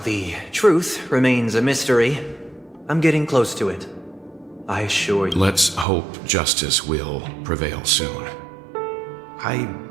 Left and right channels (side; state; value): left; drops out; at 5.9 s